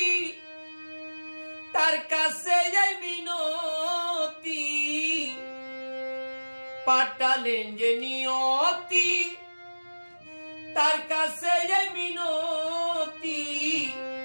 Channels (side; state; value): both; inverted; correlation -1.00